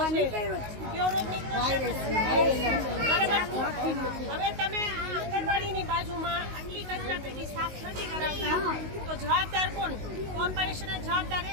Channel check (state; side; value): late; left; 19 ms